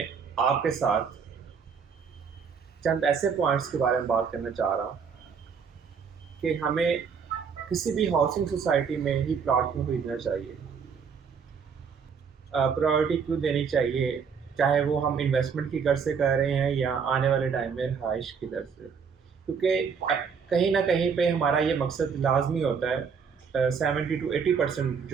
आपके साथ चंद ऐसे पॉइंट्स के बारे में बात करना चाह रहा हूं कि हमें किसी भी हाउसिंग सोसाइटी में ही प्लॉट क्यों खरीदना चाहिए, प्रायोरिटी क्यों देनी चाहिए, चाहे वो हम इन्वेस्टमेंट की गर्ज से कर रहे हैं या आने वाले टाइम में रहाइश की दर से। क्योंकि कहीं ना कहीं पे हमारा ये मकसद लाजमी होता है। 70 to 80%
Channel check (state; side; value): quieter; left; 6.2 dB